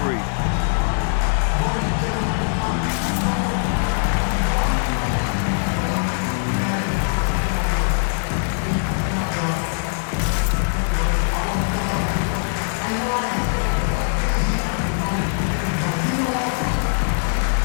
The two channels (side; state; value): right; silent; digital silence